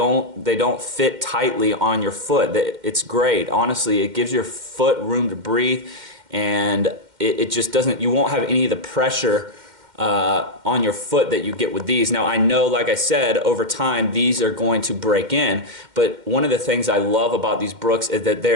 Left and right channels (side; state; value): left; late; 2.1 ms